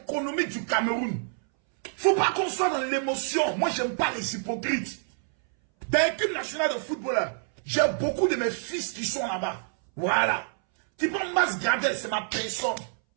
économiques du Cameroun. Faut pas qu'on soit dans l'émotion. Moi, j'aime pas les hypocrites. Dans l'équipe nationale de football, j'ai beaucoup de mes fils qui sont là-bas. Voilà. Type Mas Gradel, c'est ma personne.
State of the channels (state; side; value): silent; left; 60 dB below the other